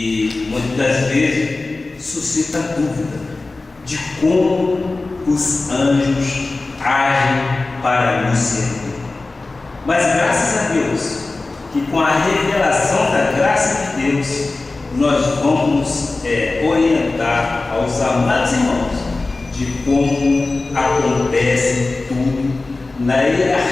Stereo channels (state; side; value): quieter; right; 3.4 dB